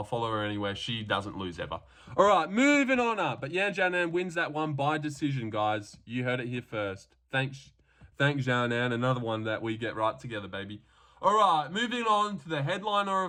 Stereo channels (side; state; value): both; identical; correlation 1.00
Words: anywhere. She doesn't lose ever. All right, moving on up. But Yan Xiaonan wins that one by decision, guys. You heard it here first. Thanks Xiaonan. Another one that we get right together, baby. All right, moving on to the headliner